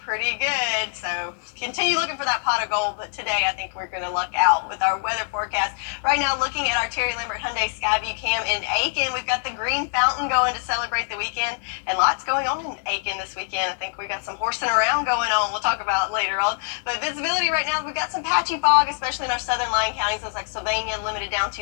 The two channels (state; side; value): silent; right; 63 dB below the other